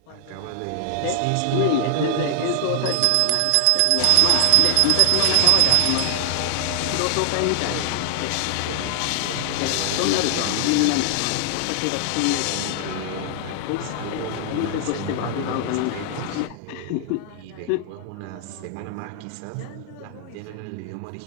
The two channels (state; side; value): different; both; correlation 0.00